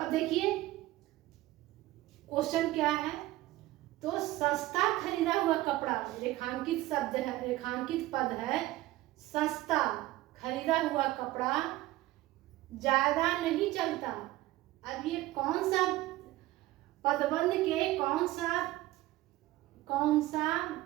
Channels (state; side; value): quieter; left; 17.2 dB